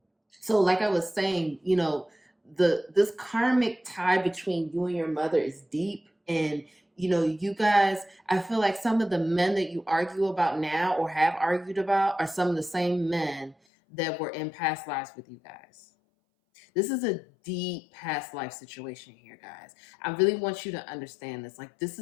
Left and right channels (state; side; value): drops out; right; at 13.6 s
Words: so, like I was saying, you know, this karmic tie between you and your mother is deep. And, you know, you guys, I feel like some of the men that you argue about now or have argued about are some of the same men that were in past lives with you guys. This is a deep past life situation here, guys. I really want you to understand this. Like, this